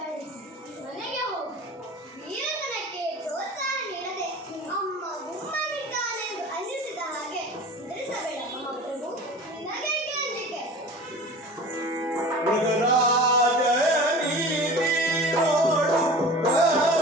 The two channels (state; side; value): normal; both; correlation 0.38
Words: ಮನೆಗೆ ಹೋಗು. ವೀರತನಕ್ಕೆ ಪ್ರೋತ್ಸಾಹ ನೀಡದೆ ಅಮ್ಮ ಗುಮ್ಮನಿದ್ದಾನೆಂದು ಅನ್ನಿಸಿದ ಹಾಗೆ ಹೆದರಿಸಬೇಡ ಮಹಾಪ್ರಭು. ನಿನಗೇಕೆ ಅಂಜಿಕೆ? ಮೃಗರಾಜ ನೀತಿ ನೋಡು